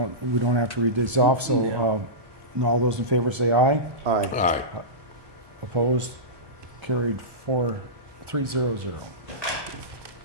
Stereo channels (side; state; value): left; late; 1.2 ms